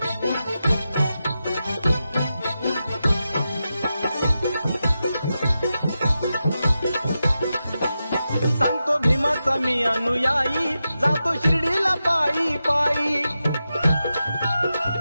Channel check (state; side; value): inverted; both; correlation -0.90